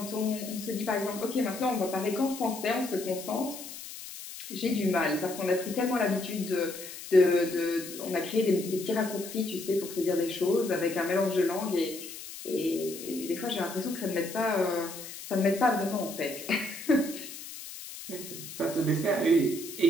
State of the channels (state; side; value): noise; left; hiss, 12 dB below the sound